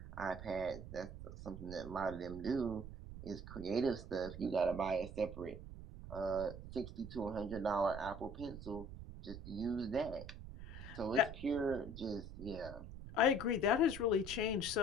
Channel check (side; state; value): right; noise; rumble, 11 dB below the sound